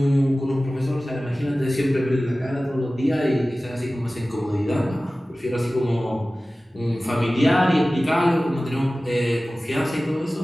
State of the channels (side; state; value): both; normal; correlation 0.97